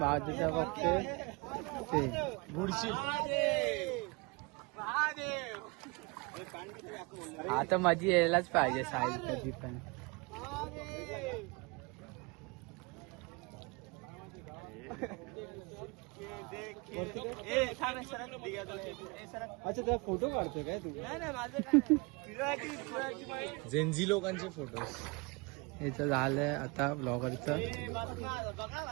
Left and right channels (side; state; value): left; quieter; 28.2 dB